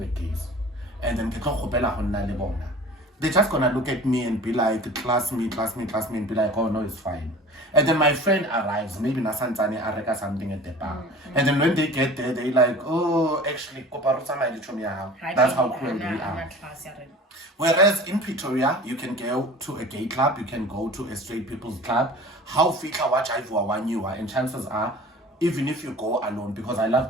gays, and then they're just gonna look at me and be like, class me, and be like, oh no, it's fine. And then my friend arrives, maybe Nasanzani Areka something at the bar. And then when they get there, they like, oh, actually, that's how cool they are. Whereas in Pretoria, you can go to a gay club, you can go to a straight people's club. How fika watch I one you are, and chances are, even if you go alone, because I love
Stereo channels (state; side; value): normal; both; correlation 0.41